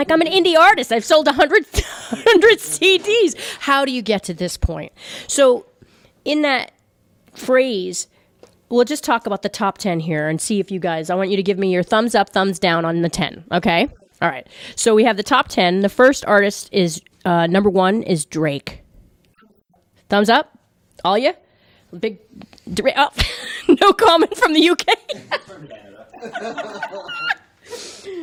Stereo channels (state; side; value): identical; both; correlation 1.00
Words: I'm an indie artist. I've sold 100 CDs. How do you get to this point? So in that phrase, we'll just talk about the top 10 here and see if you guys, I want you to give me your thumbs up, thumbs down on the 10, okay? Sure. All right. So we have the top 10. The first artist is, number 1 is Drake. Thumbs up. Thumbs up? All you? Big, oh, no comment from the UK. He's from Canada.